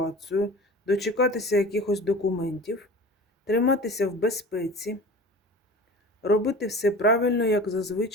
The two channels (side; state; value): both; normal; correlation 0.37